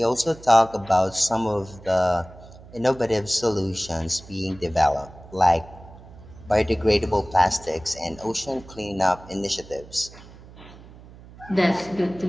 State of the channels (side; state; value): right; noise; hum, 20 dB below the sound